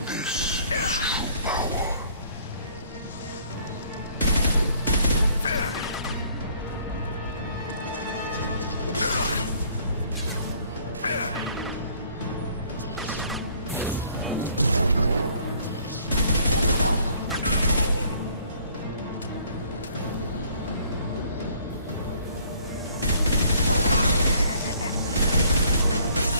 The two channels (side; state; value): both; inverted; correlation -0.60